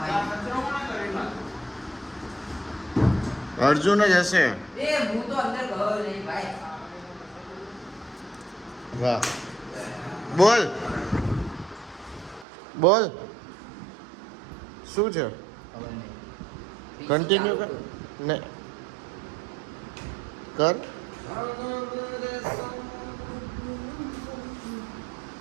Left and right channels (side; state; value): left; drops out; at 12.5 s